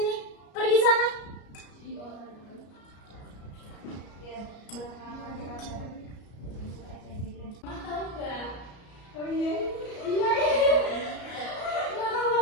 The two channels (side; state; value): right; late; 33 ms